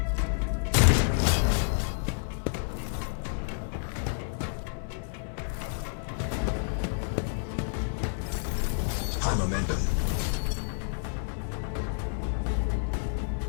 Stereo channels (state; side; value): silent; right; digital silence